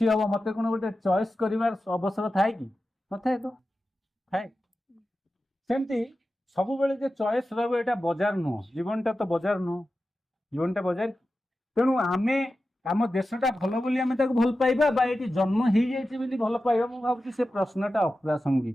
हम मत कौन गोटे चॉइस कर अवसर थाए कि नए तो थाए सेमती सब बेले जो चॉइस रहा बजार नुह जीवनटा तो बजार नुह जीवनटा बजार तेणु आमे आम देशटा भल बोली आमे ताको भल पाइबा बा ये जन्म हो जाइए भल पाइबा मु भावुँ से प्रश्नटा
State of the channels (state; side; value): normal; both; correlation 0.93